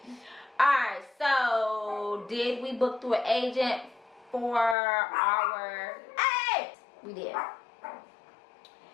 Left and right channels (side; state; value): right; drops out; at 4.8 s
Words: Alright, so did we book through an agent for our... Hey! We did.